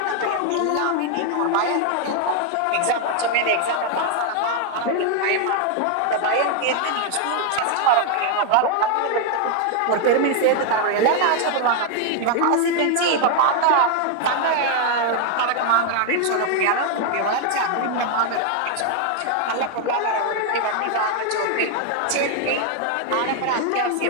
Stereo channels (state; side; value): different; both; correlation 0.00